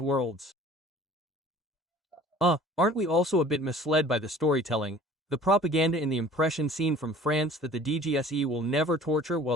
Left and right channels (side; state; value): both; normal; correlation 0.48